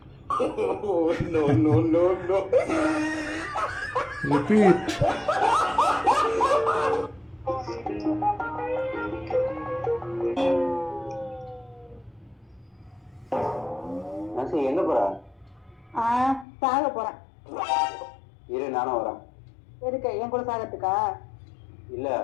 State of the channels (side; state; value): right; drops out; at 16.4 s